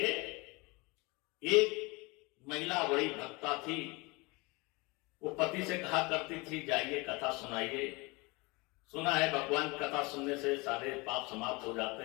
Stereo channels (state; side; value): quieter; right; 25.9 dB